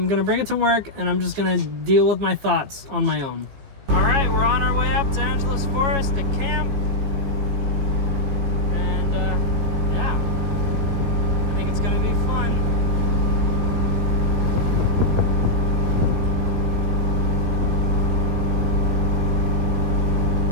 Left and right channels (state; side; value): late; left; 15 ms